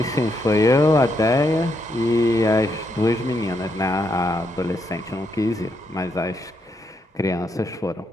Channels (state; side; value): normal; both; correlation 0.78